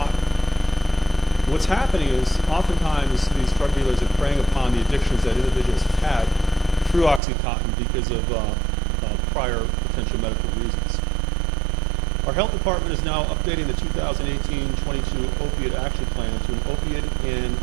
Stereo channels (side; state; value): left; drops out; at 7.2 s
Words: What's happening is oftentimes these drug dealers are preying upon the addictions that individuals have had through Oxycontin because of prior potential medical reasons. Our health department is now updating the 2018-22 opiate action plan to an opiate and